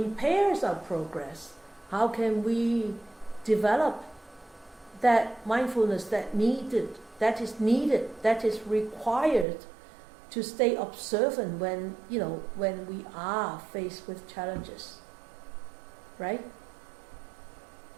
our progress, how can we develop that mindfulness that is required to stay observant when we are faced with challenges, right?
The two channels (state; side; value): drops out; left; at 9.5 s